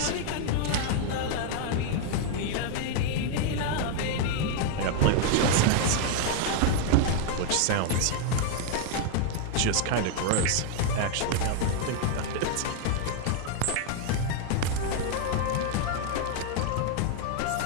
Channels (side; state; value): both; different; correlation 0.00